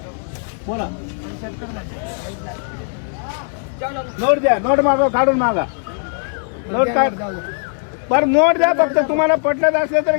बोला. नोट द्या. नोट मागा काढून मागा. नोट काढ. बरं नोट द्या. फक्त तुम्हाला पटलं असलं तर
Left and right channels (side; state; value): right; silent; digital silence